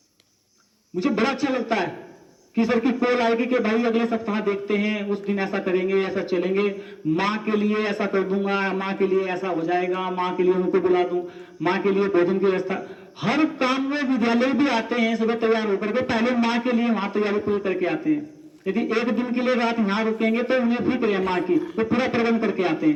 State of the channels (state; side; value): identical; both; correlation 1.00